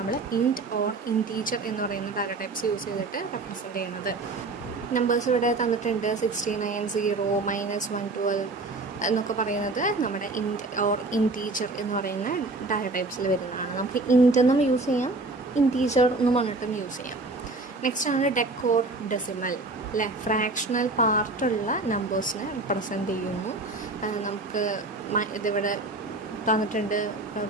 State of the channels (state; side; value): quieter; left; 3.3 dB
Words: ഇൻറ്റ് ഓർ ഇൻറ്റീജർ എന്ന് പറയുന്ന ഡാറ്റ ടൈപ്സ് യൂസ് ചെയ്തിട്ട് റെപ്രസെൻറ്റ് ചെയ്യുന്നത്. നമ്പേഴ്സ് ഇവിടെ തന്നിട്ടുണ്ട് 69, 0, -112 എന്നൊക്കെ പറയുന്നത് നമ്മുടെ ഇൻറ്റ് ഓർ ഇൻറ്റീജർ എന്ന് പറയുന്ന ഡാറ്റ ടൈപ്സിൽ വരുന്നതാണ്. നമുക്ക് ഇൻറ്റ് എന്നും യൂസ് ചെയ്യാം, ഇൻറ്റീജർ എന്നും പറഞ്ഞിട്ടും യൂസ് ചെയ്യാം. നെക്സ്റ്റ് ആണ് ഡെക്കോഡ് ഡെസിമൽ അല്ലേ. ഫ്രാക്ഷണൽ പാർട്ടുള്ള നമ്പേഴ്സിനെ റെപ്രസെൻറ്റ് ചെയ്യുന്നു. നമുക്ക് ഇതിവിടെ തന്നിട്ടുണ്ട്